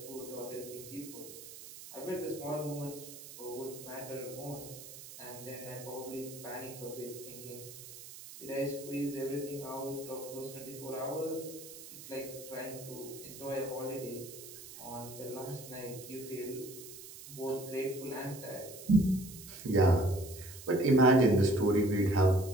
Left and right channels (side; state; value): right; noise; hiss, 14 dB below the sound